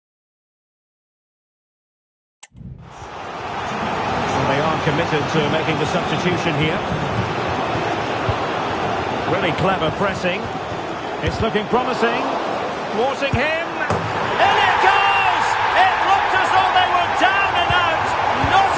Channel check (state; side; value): identical; both; correlation 1.00